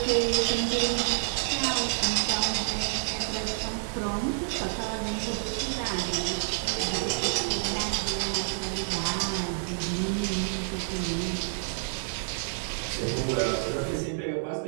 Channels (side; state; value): left; silent; 59 dB below the other